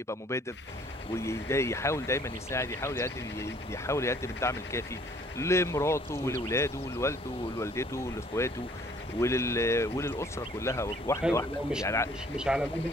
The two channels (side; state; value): both; normal; correlation 0.59